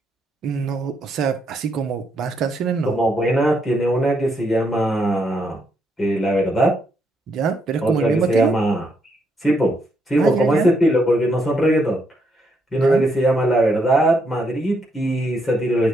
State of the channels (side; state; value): both; normal; correlation 0.76